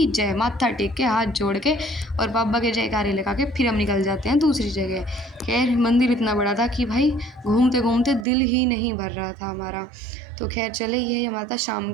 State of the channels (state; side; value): drops out; left; at 8.2 s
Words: जय। माथा टेक के हाथ जोड़ के और बाबा के जयकारे लगा के फिर हम निकल जाते हैं दूसरी जगह। खैर मंदिर इतना बड़ा था कि भाई घूमते घूमते दिल ही नहीं भर रहा था हमारा। तो खैर चले, ये हमारा शाम